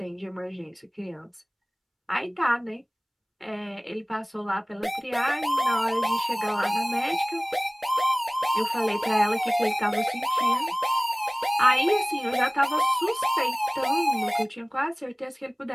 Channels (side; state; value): both; identical; correlation 1.00